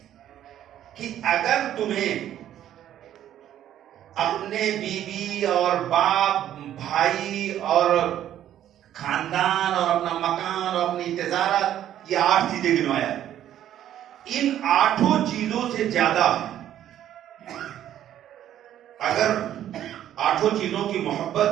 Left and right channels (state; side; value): quieter; left; 11.4 dB